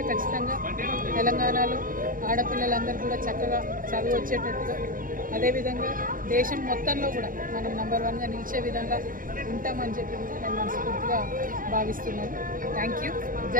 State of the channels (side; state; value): left; late; 0.40 ms